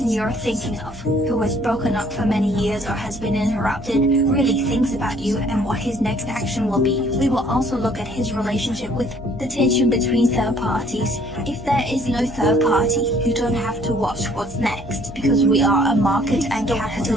you're thinking of, who was broken up for many years or has been interrupted, really thinks about you and what his next action will be. We will also look at his relationship with the tension between third parties. If there is no third party, you don't have to watch what's next, because we are a market and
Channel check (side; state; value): both; normal; correlation 0.60